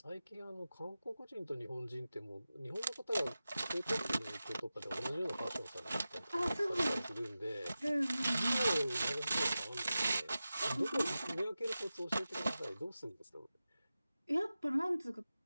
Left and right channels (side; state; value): both; inverted; correlation -0.94